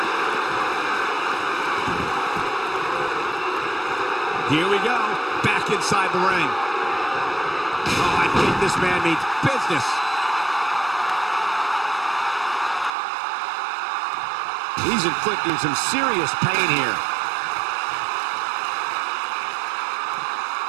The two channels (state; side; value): drops out; left; at 12.9 s